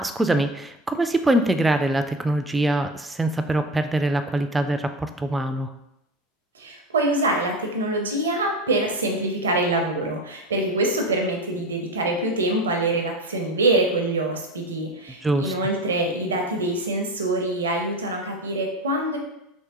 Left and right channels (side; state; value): both; normal; correlation 0.25